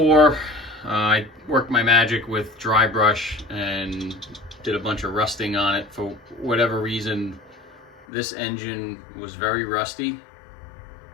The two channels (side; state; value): right; drops out; at 8.1 s